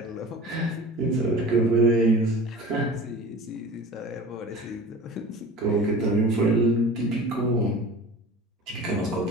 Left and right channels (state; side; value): normal; both; correlation 0.38